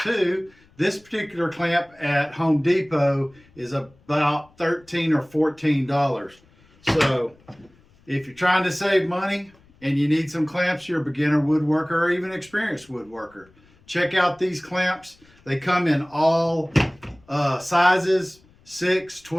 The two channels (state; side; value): noise; left; rumble, 30 dB below the sound